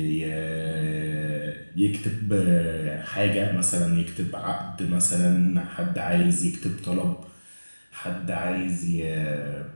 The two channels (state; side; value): inverted; both; correlation -1.00